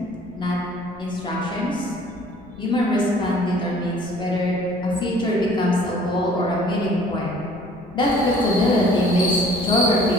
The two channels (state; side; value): noise; left; rumble, 23 dB below the sound